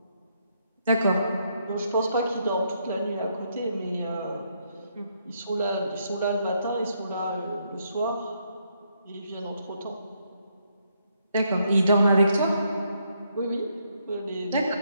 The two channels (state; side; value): inverted; both; correlation -0.75